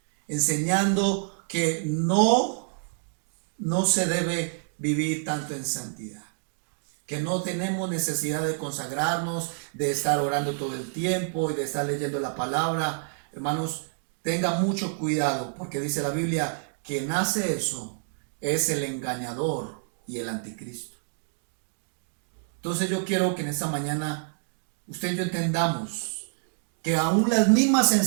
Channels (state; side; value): silent; left; digital silence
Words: enseñando que no se debe vivir tanto en santidad, que no tenemos necesidad de consagrarnos, de estar orando todo el tiempo y de estar leyendo la palabra. Hermanos, tengan mucho cuidado porque dice la Biblia, quien hace eso es el engañador y el anticristo. Entonces yo quiero que en esta mañana usted y yo entendamos que aún las mismas